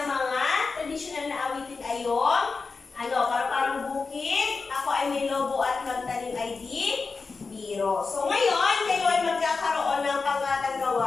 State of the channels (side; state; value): right; quieter; 4.4 dB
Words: mga tradisyonal na awitin ay yung Parang bukid. Ako ay may lobo at magtanim ay di biro. So ngayon, kayo ay magkakaroon ng pangatang